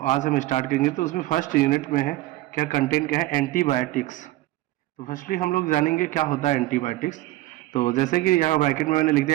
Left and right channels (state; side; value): quieter; left; 17.1 dB